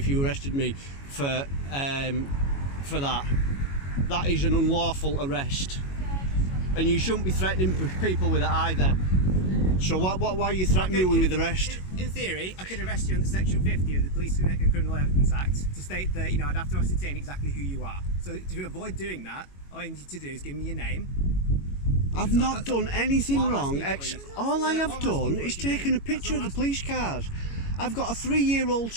you arrested me for that. That is an unlawful arrest, and you shouldn't be threatening people with it either. So why are you threatening me with arrest? In theory, I could arrest you under Section 50 of the Police and Criminal Evidence Act to state that I'd have to ascertain exactly who you are. So to avoid doing that, all you need to do is give me your name. I've not done anything wrong. All I have done is taken taken a picture of the police cars. I've got a 3-year-old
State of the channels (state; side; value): late; right; 22 ms